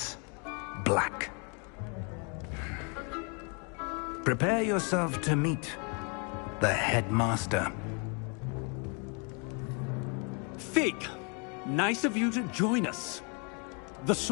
Black. Prepare yourself to meet the headmaster. Fig, nice of you to join us. The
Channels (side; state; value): right; quieter; 35.8 dB